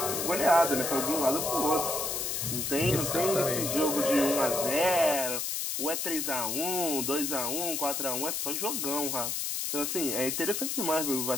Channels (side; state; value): left; noise; hiss, 1 dB below the sound